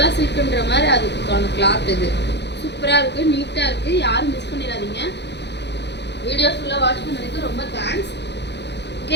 சில்க்ன்ற மாதிரி அதுக்கான கிளாத் இது சூப்பரா இருக்கு, நீட்டா இருக்கு. யாரும் மிஸ் பண்ணிடாதீங்க. வீடியோ ஃபுல்லா வாட்ச் பண்ணதுக்கு ரொம்ப தேங்க்ஸ். ஓகே,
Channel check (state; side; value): late; right; 0.50 ms